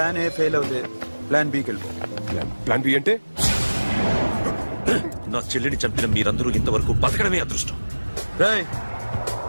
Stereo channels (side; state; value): both; inverted; correlation -1.00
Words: ఏ ఫెయిల్ అవుతే ప్లాన్ బికి వెళ్ళిపో. ప్లాన్ బి అంటే? నా చెల్లిని చంపిన మీరందరూ ఇంతవరకు బతకడమే అదృష్టం. రేయ్,